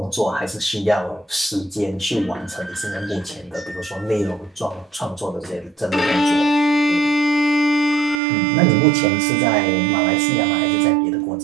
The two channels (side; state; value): left; drops out; at 8.2 s